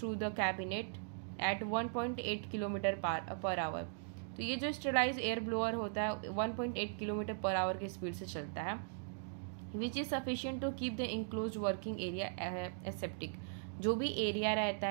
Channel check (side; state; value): left; silent; digital silence